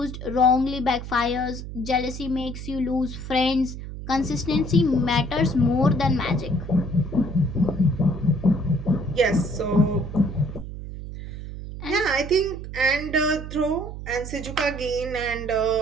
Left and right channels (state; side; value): noise; right; hum, 9 dB below the sound